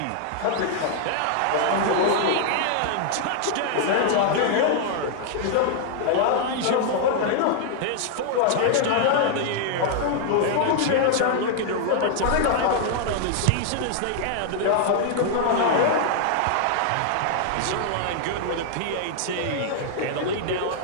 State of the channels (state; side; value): different; both; correlation -0.01